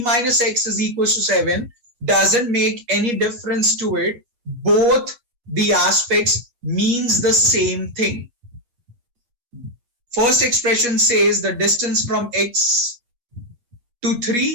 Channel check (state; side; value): late; left; 8.3 ms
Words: minus x is equals to 7, doesn't make any difference to it. Both the aspects means the same thing. First expression says the distance from x to